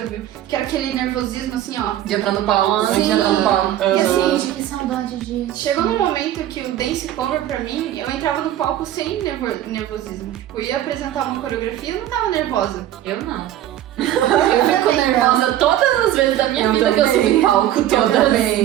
ao vivo. Quero aquele nervosismo assim, ó. De entrar no palco, Sim. antes de entrar no palco. E assim, Que saudade disso. chegou num momento que o dance cover pra mim, eu entrava no palco sem nervosismo. Tipo, eu ia apresentar uma coreografia e eu não tava nervosa. Eu não. Eu Fico nervosa todas as vezes da minha vida que eu subo em palco. Eu Todas.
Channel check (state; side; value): quieter; left; 12.6 dB